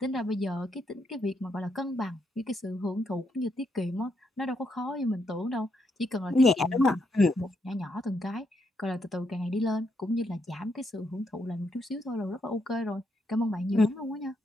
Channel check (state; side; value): normal; both; correlation 0.78